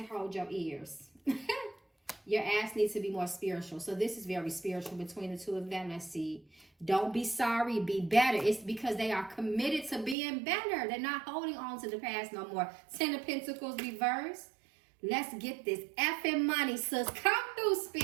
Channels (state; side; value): drops out; left; at 10.2 s